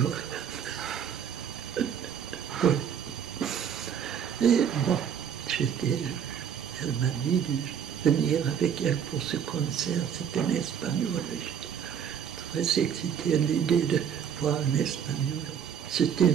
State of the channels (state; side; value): quieter; left; 8.2 dB